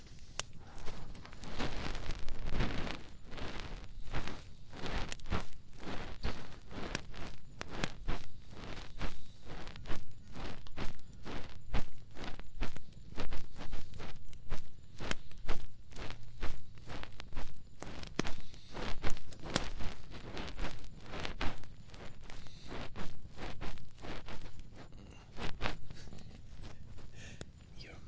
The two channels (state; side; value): identical; both; correlation 1.00